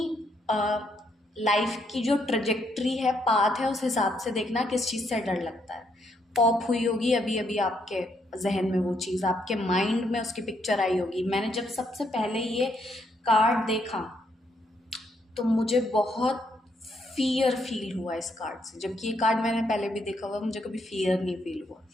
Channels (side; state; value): both; normal; correlation 0.75